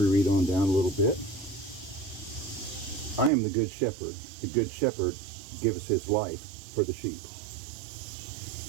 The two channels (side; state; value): left; drops out; at 3.3 s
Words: me read on down a little bit. I am the good shepherd. The good shepherd gives his life for the sheep.